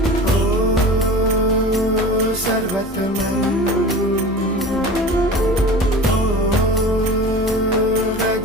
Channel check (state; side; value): normal; both; correlation 0.36